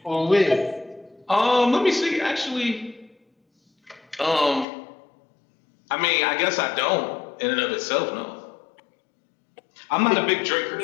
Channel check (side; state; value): right; drops out; at 4.7 s